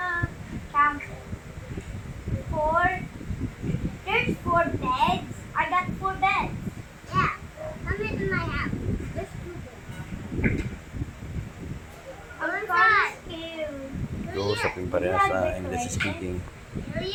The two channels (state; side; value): identical; both; correlation 1.00